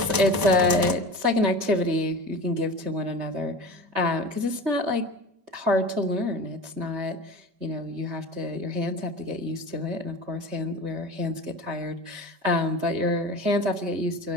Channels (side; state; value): left; late; 5.1 ms